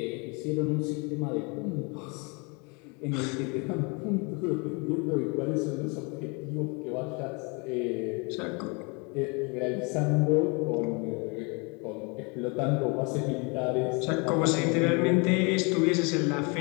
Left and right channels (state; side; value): quieter; right; 31.4 dB